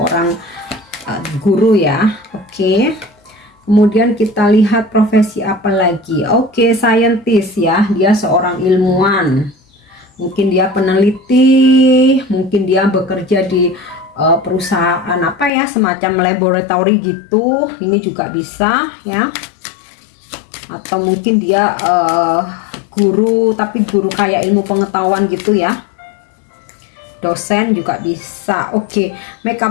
guru ya. Oke. Kemudian kita lihat profesi apa lagi. Oke, scientist ya, dia seorang ilmuwan. Mungkin dia peneliti, mungkin dia bekerja di perusahaan semacam laboratory gitu. Ini juga bisa ya. Atau mungkin dia guru, tapi guru kayak ilmu pengetahuan gitu ya. Dosen juga bisa. Oke,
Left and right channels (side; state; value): right; drops out; at 15.5 s